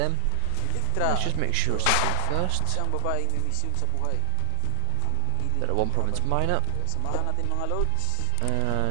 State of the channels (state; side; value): different; both; correlation 0.00